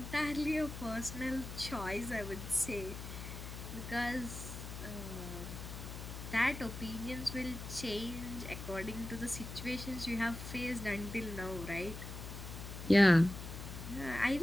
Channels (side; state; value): left; noise; hum, 9 dB below the sound